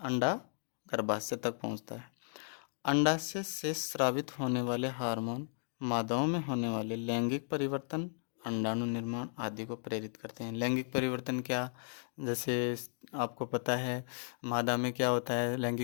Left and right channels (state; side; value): silent; right; digital silence